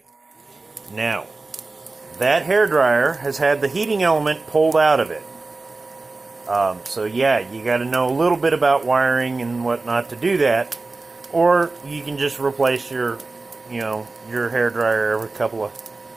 Now, that hair dryer has had the heating element pulled out of it. So yeah, you got to know a little bit about wiring and whatnot to do that, or you can just replace your hair dryer every couple of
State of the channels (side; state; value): left; quieter; 3.5 dB